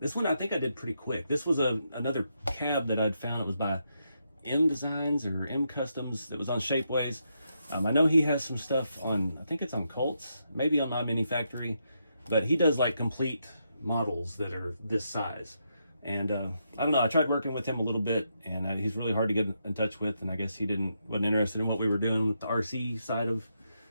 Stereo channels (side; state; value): both; inverted; correlation -0.81